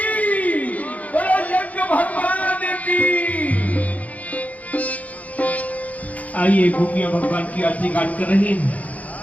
आइए गोपियां भगवान की आरती गान कर रही हैं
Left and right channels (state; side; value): late; right; 0.072 ms